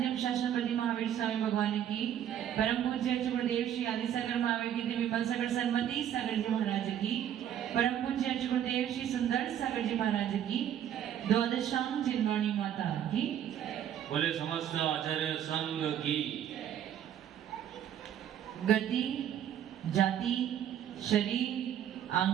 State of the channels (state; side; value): quieter; left; 10.1 dB